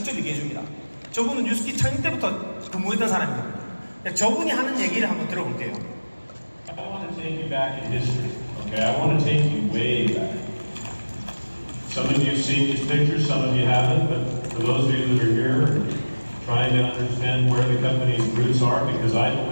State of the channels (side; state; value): both; inverted; correlation -1.00